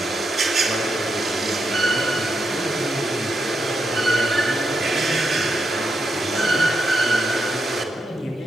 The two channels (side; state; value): both; normal; correlation 0.83